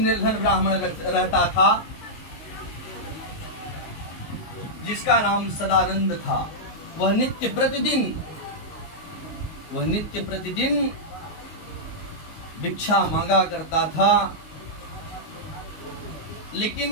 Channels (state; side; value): late; right; 19 ms